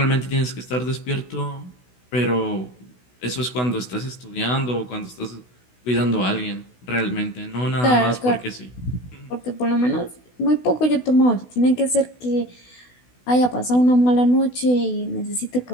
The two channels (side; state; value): right; late; 16 ms